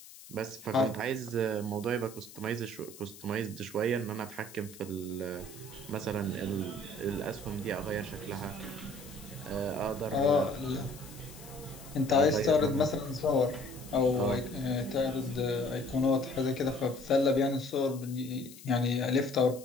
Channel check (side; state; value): left; noise; hiss, 18 dB below the sound